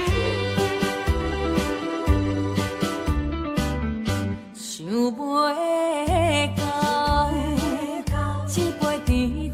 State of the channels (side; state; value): both; identical; correlation 1.00